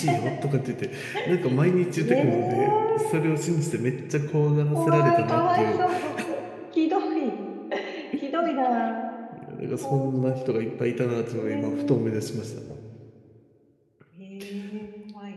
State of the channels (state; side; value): identical; both; correlation 1.00